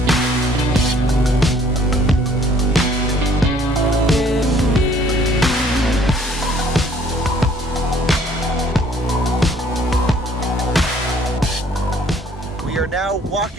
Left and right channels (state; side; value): normal; both; correlation 0.59